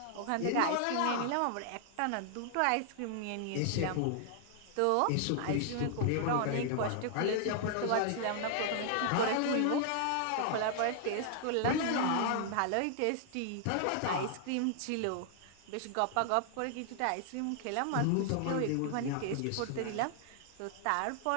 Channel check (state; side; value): different; both; correlation 0.00